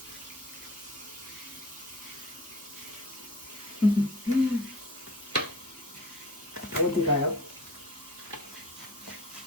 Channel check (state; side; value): normal; both; correlation 0.43